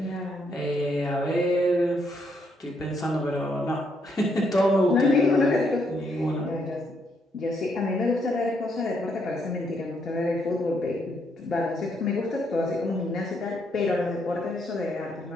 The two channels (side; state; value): both; normal; correlation 0.74